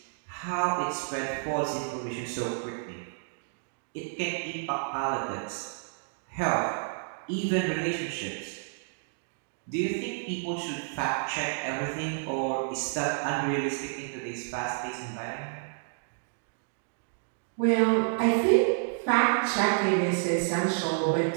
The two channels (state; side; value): silent; left; digital silence